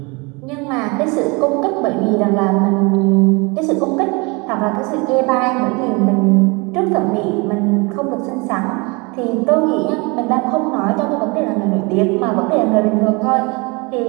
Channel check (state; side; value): quieter; left; 28.2 dB